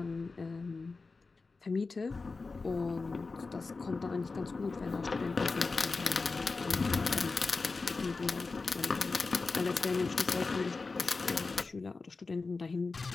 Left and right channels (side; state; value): right; quieter; 4.0 dB